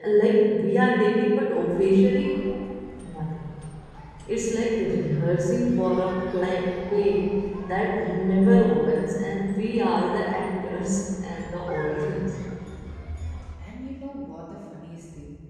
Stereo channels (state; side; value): identical; both; correlation 1.00